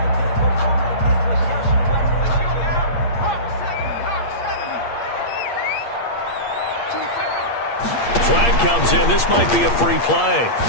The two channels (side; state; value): right; late; 8.6 ms